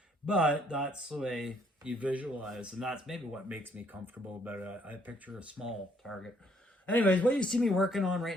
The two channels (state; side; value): normal; both; correlation 0.67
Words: that's the way you visualize, and that's maybe what makes me comfortable about it. I picture a small target. Anyways, what you see me working on